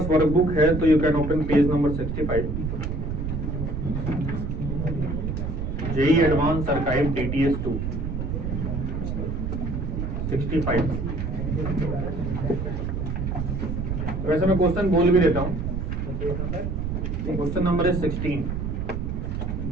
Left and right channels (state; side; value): noise; right; rumble, 2 dB below the sound